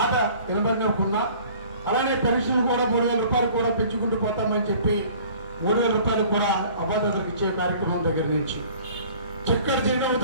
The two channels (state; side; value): inverted; both; correlation -0.50